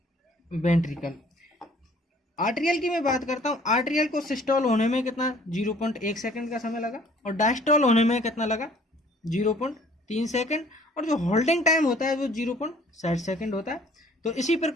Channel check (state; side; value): normal; both; correlation 0.56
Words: वेंट्रिकल। आर्टेरियल की मैं बात करता हूं, आर्टेरियल को सिस्टोल होने में कितना, 0.1 सेकंड का समय लगा, और डायस्टोल होने में कितना लगा, 0.3 सेकंड, और जो होल्डिंग टाइम होता है वो 0.7 सेकंड होता है। तो इसी